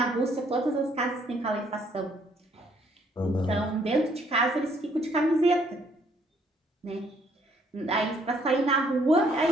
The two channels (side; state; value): both; normal; correlation 0.66